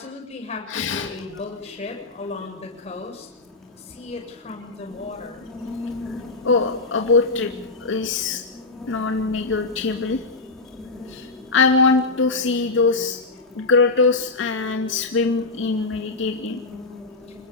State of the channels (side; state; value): right; quieter; 3.6 dB